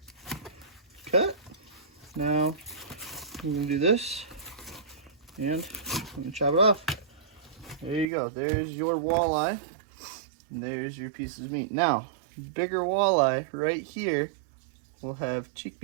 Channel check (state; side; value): drops out; left; at 8.1 s